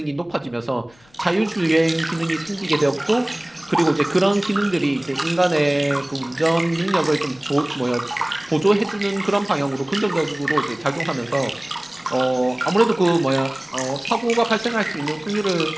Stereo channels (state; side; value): noise; left; rumble, 30 dB below the sound